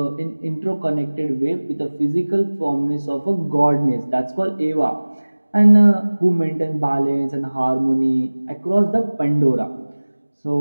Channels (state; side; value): inverted; both; correlation -1.00